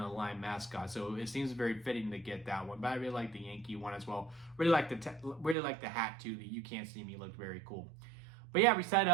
a Lime mascot, so it seems very fitting to get that one. But I really like the Yankee one as well. Really like the hat too. The "You Can't See Me" looked very cool. But yeah, we set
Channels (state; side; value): drops out; left; at 5.6 s